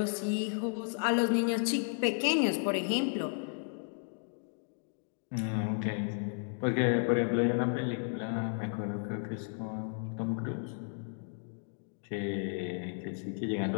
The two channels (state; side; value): silent; right; 55 dB below the other